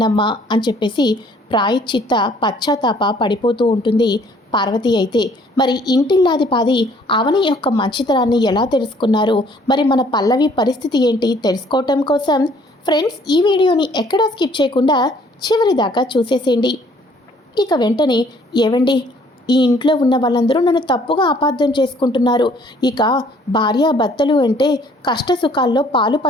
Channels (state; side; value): normal; both; correlation 0.60